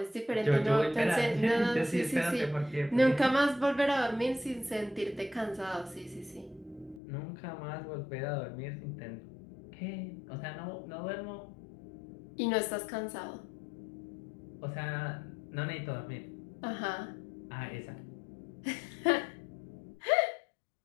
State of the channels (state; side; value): drops out; right; at 7.0 s